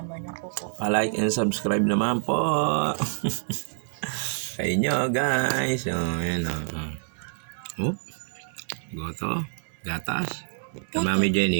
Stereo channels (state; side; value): silent; left; 60 dB below the other